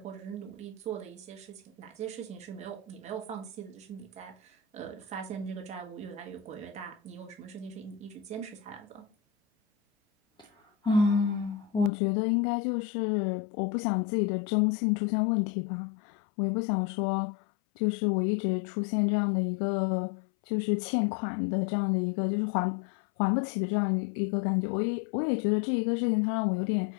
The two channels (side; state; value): right; drops out; at 11.9 s